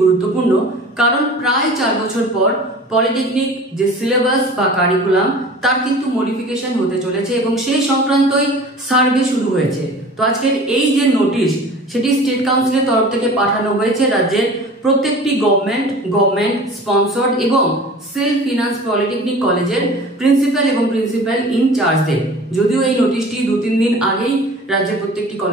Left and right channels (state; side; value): normal; both; correlation 0.42